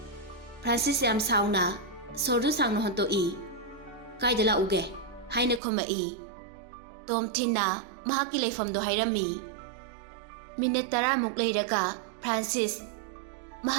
ꯐ꯭ꯔꯥꯟꯁꯤꯁ ꯌꯥꯝ ꯁꯥꯎꯅ ꯁꯣꯔꯗꯨ ꯁꯥꯡꯅ ꯍꯣꯟꯇꯣꯛꯏ꯫ ꯀꯥꯏꯗ ꯂꯥꯛꯎꯒꯦ ꯍꯥꯏꯅ ꯈꯨꯝꯃꯛꯏ꯫ ꯇꯣꯝꯊꯤꯟꯅ ꯃꯍꯥꯛꯀꯤ ꯂꯩꯐꯝꯗꯣ ꯍꯥꯏꯔꯝꯃꯤ꯫ ꯃꯤꯅꯠ 10ꯃꯨꯛ ꯂꯩꯔꯒ ꯐ꯭ꯔꯥꯟꯁꯤꯁ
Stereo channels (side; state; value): left; drops out; at 5.6 s